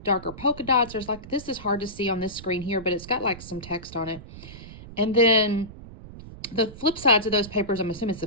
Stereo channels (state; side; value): noise; right; rumble, 15 dB below the sound